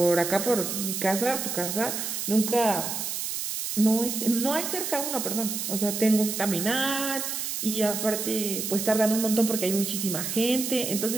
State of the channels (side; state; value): right; noise; hiss, 3 dB below the sound